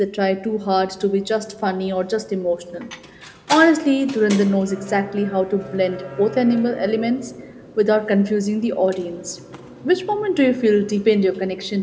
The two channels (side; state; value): both; identical; correlation 1.00